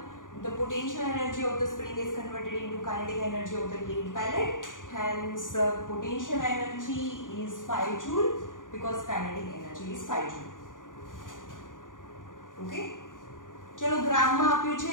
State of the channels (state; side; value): late; right; 0.88 ms